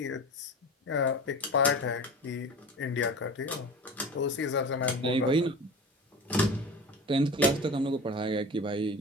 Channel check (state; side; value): normal; both; correlation 0.34